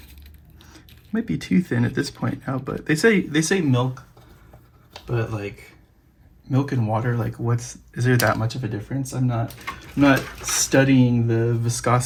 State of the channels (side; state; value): both; identical; correlation 1.00